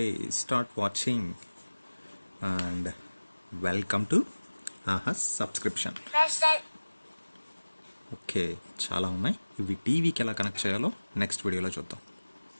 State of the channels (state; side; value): inverted; both; correlation -1.00